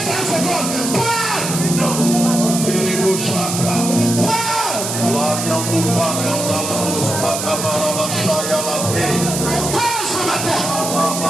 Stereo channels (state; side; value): noise; right; hiss, 4 dB below the sound